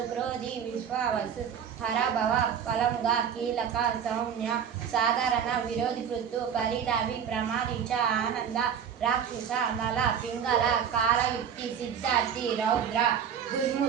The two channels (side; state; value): left; quieter; 8.0 dB